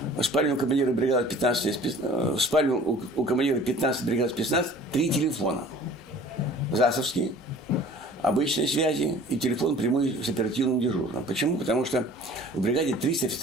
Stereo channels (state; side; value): normal; both; correlation 0.47